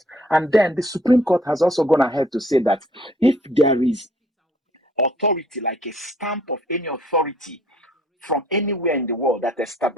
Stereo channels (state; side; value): normal; both; correlation 0.60